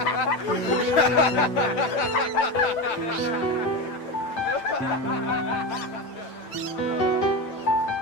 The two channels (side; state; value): right; late; 9.0 ms